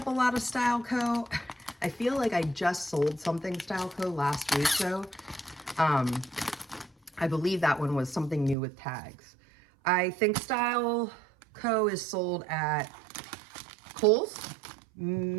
a lot of Styleco. I feel like I just sold something Styleco last week though. I believe that one was something new with tags. I think Styleco is sold at Kohl's,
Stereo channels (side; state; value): left; drops out; at 8.6 s